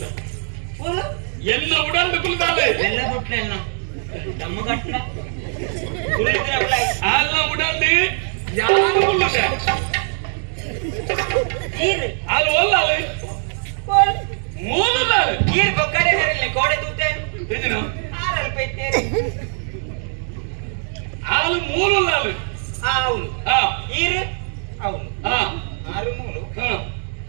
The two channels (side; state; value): left; silent; 65 dB below the other